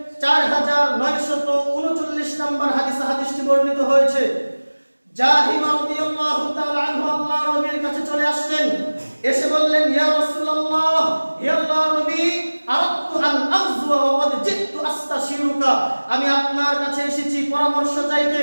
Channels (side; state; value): both; inverted; correlation -1.00